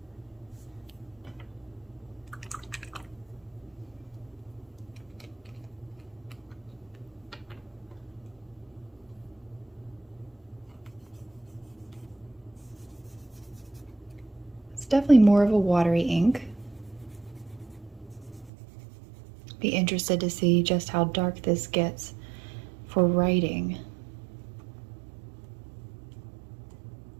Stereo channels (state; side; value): drops out; left; at 18.5 s